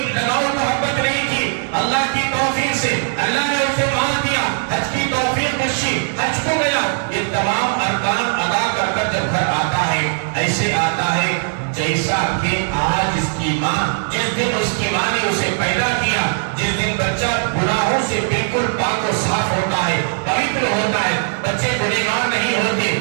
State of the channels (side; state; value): left; silent; digital silence